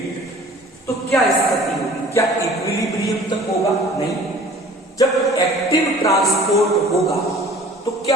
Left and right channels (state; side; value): normal; both; correlation 0.48